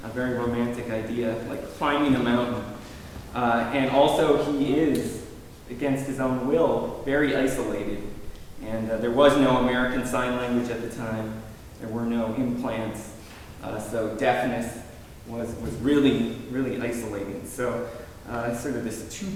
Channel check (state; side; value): identical; both; correlation 1.00